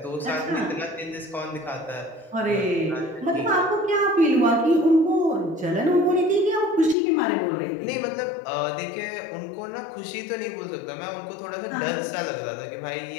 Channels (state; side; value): drops out; right; at 7.0 s